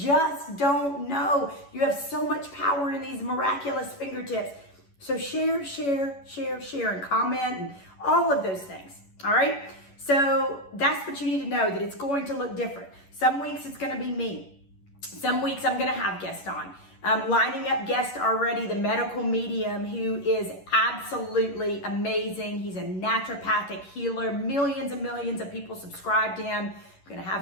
don't know. You have so much power in these miraculous fingertips. So share, share, share, share, and comment and all of those things. All right. So that's what you need to know, that it's going to look different. Some weeks it's going to be me. Some weeks I'm going to have guests on. Lining up guests already, the medical medium who is absolutely amazing. He's a naturopathic healer. Millions and millions of people subscribe to him. I'm going to have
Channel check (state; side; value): late; right; 11 ms